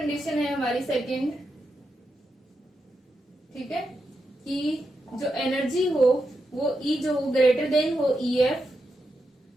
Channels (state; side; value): normal; both; correlation 0.86